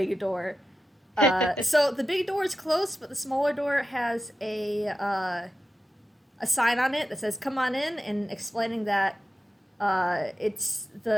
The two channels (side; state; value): both; normal; correlation 0.92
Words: door. So the big door is closed, but the smaller door has a sign on it that says "Come on in," and explaining that